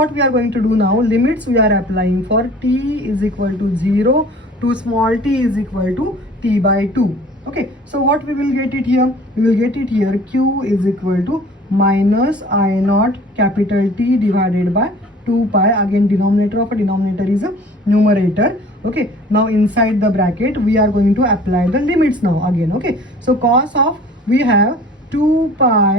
we are going to do now, limits we are applying for t is equal to 0 to small t is equal to t by 2. Okay, so what we will get it here, we will get it here q is equal to minus I naught capital T divided by 2 pi. Again denominator of a denominator is a numerator. Okay, now inside the bracket we are going to apply the limits now again. Okay, so cos of we have 2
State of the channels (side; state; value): both; normal; correlation 0.48